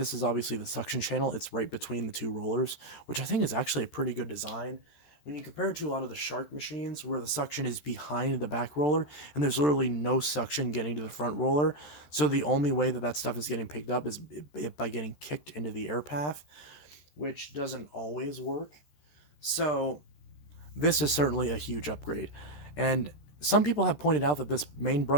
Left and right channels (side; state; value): right; late; 13 ms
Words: is obviously the suction channel. It's right between the two rollers, which I think is actually a pretty good design. when you compare it to a lot of the Shark machines where the suction is behind the back roller and there's literally no suction getting to the front roller, so the only way that that stuff is getting picked up is by getting kicked into the air path, which doesn't always work. So this is certainly a huge upgrade. And some people have pointed out that this main